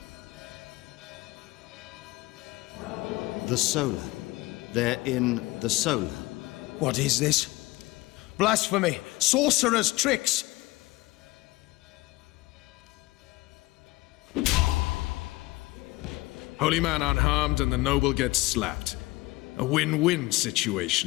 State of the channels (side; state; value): right; quieter; 20.6 dB